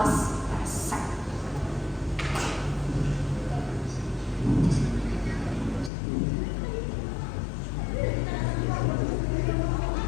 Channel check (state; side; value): drops out; right; at 5.9 s